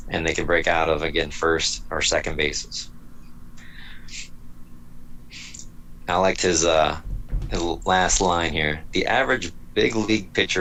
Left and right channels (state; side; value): identical; both; correlation 1.00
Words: And they can break out of, again, first or second bases. I liked his last line here. The average big league